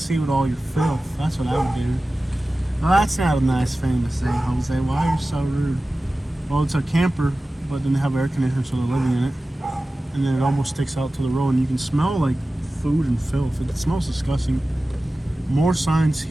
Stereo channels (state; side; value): normal; both; correlation 0.96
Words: with all your filth? That's what I would do. Well, that's not a nice thing to say, Jose. Why are you so rude? Well, it's a camper, but then they have air conditioning, so they're living in it. And then it almost sticks out to the road, and you can smell like food and filth. It smells disgusting. More signs